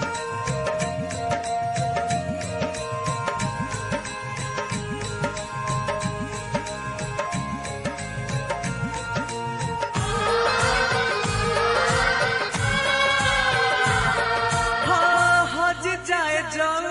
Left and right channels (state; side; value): identical; both; correlation 1.00